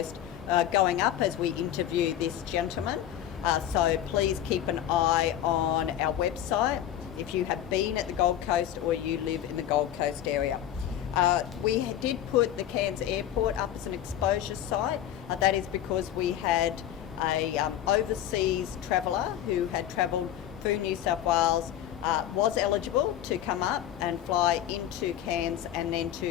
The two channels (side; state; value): right; quieter; 11.1 dB